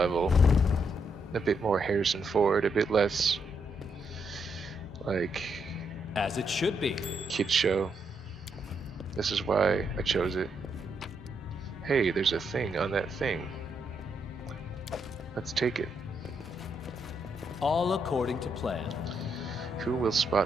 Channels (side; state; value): both; normal; correlation 0.78